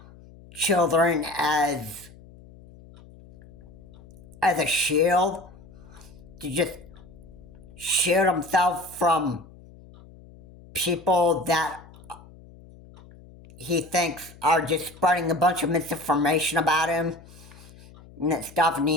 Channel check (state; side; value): noise; left; hum, 22 dB below the sound